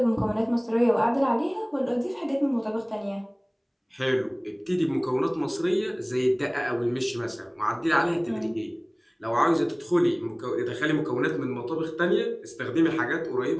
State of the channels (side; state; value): both; identical; correlation 1.00